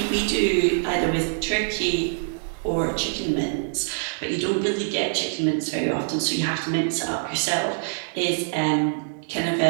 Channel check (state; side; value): silent; left; digital silence